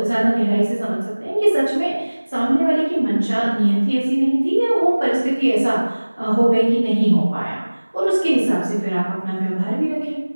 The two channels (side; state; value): both; inverted; correlation -1.00